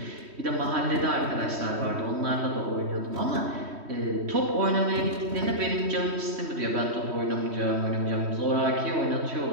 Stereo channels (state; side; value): late; left; 3.1 ms